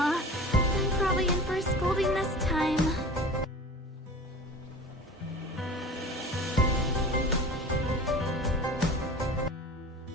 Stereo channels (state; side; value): normal; both; correlation 0.37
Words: I'm probably in for a scolding this time.